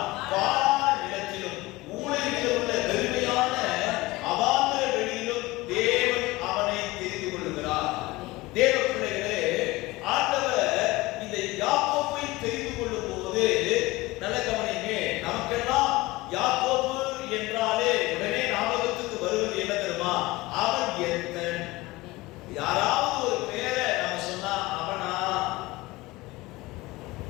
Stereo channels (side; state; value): right; quieter; 20.1 dB